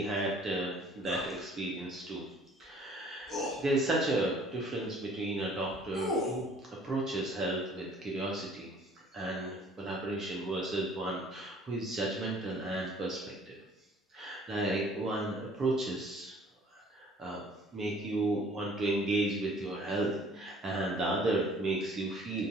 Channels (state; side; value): normal; both; correlation 0.54